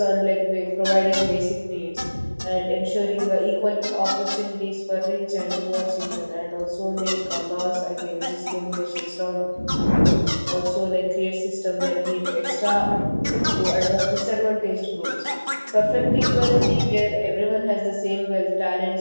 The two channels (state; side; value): inverted; both; correlation -1.00